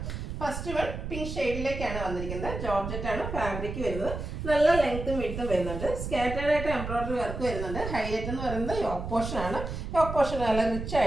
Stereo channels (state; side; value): noise; right; rumble, 6 dB below the sound